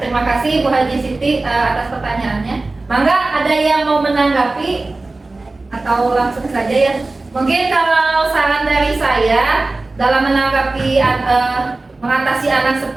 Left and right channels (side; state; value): left; quieter; 3.2 dB